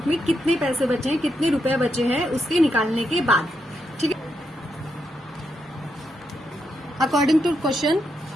में कितने पैसे बचे हैं, कितने रुपए बचे हैं उसके निकालने के बाद। ठीक है, अकॉर्डिंग टू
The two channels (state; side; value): normal; both; correlation 0.82